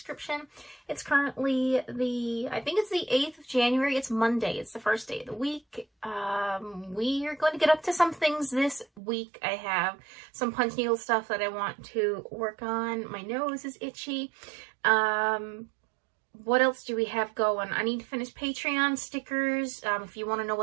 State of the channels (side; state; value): left; drops out; at 9.0 s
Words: It's currently I think it's the 8th of January. It's Monday. It's the first day of the week. We are going to get up to some things this week. I have some punch needle stuff that I want to work on. My nose is itchy. What else do we have going? I need to finish Patreon stickers. If you want to know